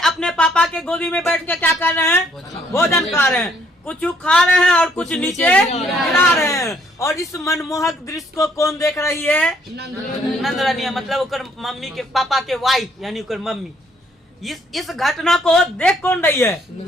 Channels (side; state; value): both; normal; correlation 0.67